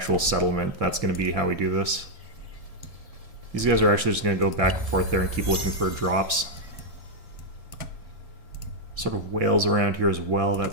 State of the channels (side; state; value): left; late; 1.7 ms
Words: settlement. That's going to be how we do this. These guys are actually just going to go back and forth there and keep looking for drops. Sort of whales around here as well.